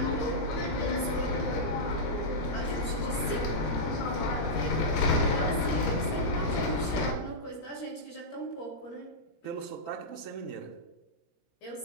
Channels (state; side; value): late; right; 17 ms